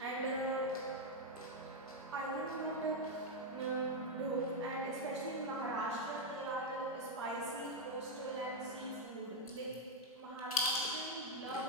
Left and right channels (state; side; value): normal; both; correlation 0.02